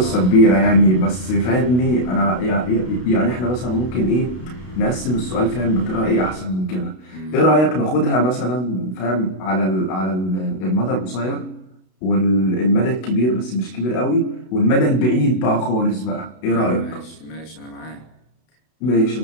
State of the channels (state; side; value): late; right; 32 ms